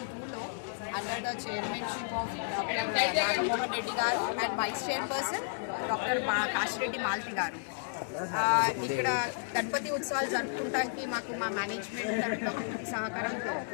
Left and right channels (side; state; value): right; silent; digital silence